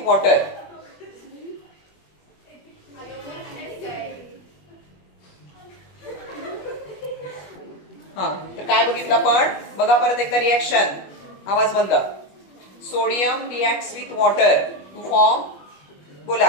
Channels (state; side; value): late; right; 21 ms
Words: वॉटर तर काय बघितलं आपण बघा परत एकदा रिॲक्शन. आवाज बंद. Sodium reacts with water to form बोला